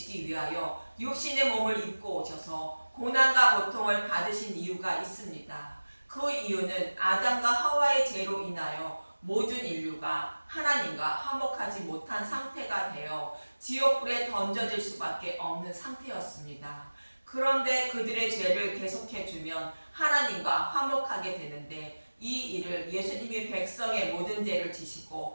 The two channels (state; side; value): inverted; both; correlation -1.00